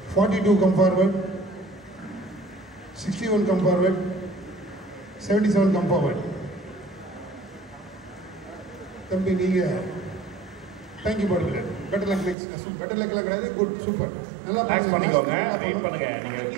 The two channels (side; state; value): left; drops out; at 12.4 s